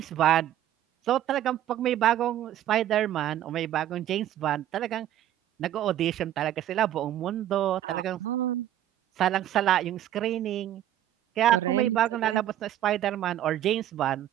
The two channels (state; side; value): quieter; left; 12.1 dB